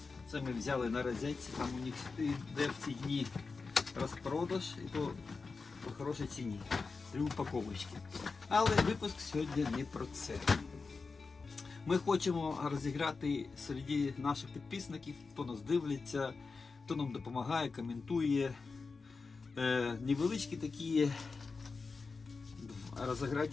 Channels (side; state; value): right; quieter; 4.4 dB